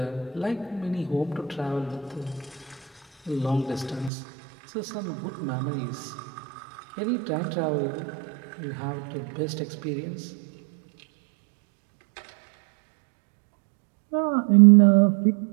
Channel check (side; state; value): left; drops out; at 4.1 s